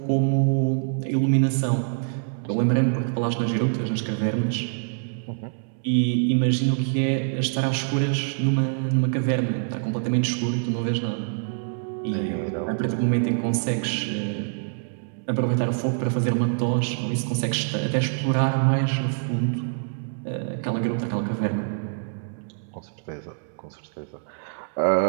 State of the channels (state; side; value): silent; left; digital silence